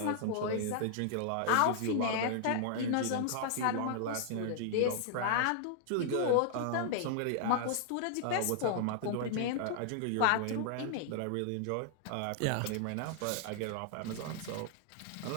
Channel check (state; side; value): different; both; correlation -0.01